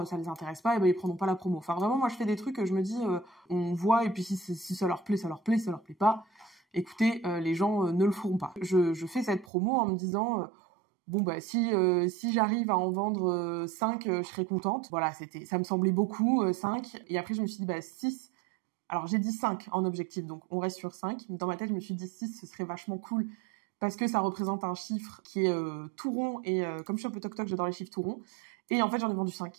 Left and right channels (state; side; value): drops out; left; at 9.5 s